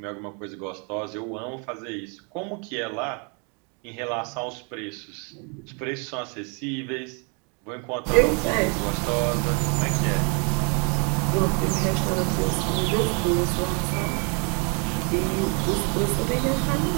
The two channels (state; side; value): quieter; left; 36.0 dB